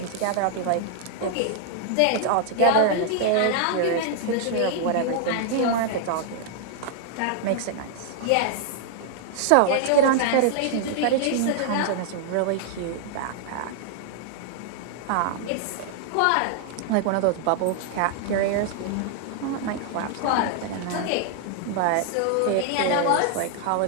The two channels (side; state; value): both; different; correlation 0.00